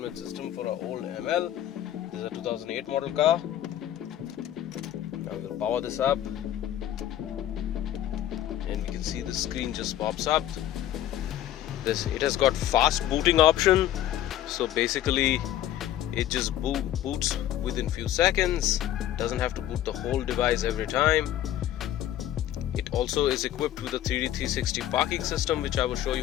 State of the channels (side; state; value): right; quieter; 12.3 dB